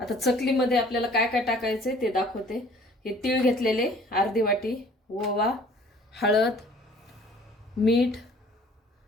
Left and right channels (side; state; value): both; normal; correlation 0.53